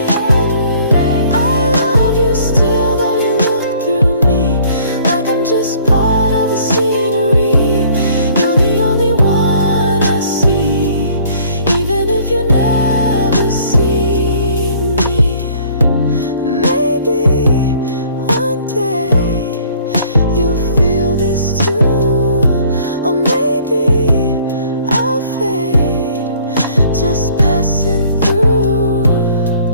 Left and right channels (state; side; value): inverted; both; correlation -0.57